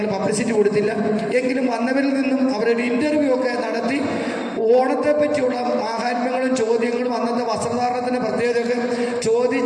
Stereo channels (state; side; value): identical; both; correlation 1.00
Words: പബ്ലിസിറ്റി കൊടുത്തില്ല. എങ്കിലും വന്നവരിൽ നിന്നും അവരൊരു ഇൻ്റർവ്യൂ ഒക്കെ നടത്തി ഓണത്തെ പറ്റിയുള്ള മാഹാത്മ്യങ്ങളും ചോദ്യങ്ങളും അന്നത്തെ വസ്ത്രധാരണത്തിൻ്റെ പ്രത്യേകതയൊക്കെ